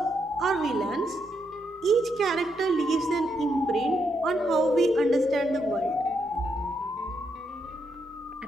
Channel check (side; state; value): both; normal; correlation 0.79